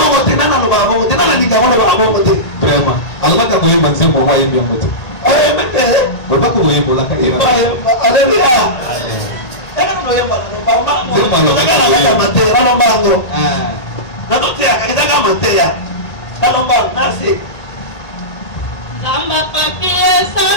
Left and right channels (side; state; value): right; late; 1.8 ms